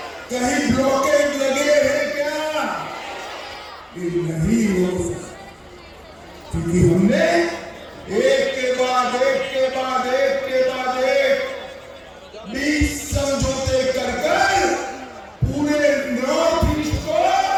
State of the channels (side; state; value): both; identical; correlation 1.00